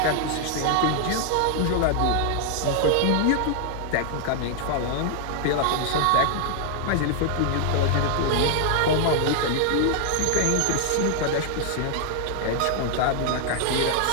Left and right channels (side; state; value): both; different; correlation 0.00